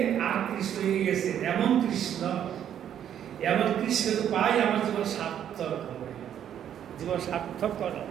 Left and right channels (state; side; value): quieter; left; 9.8 dB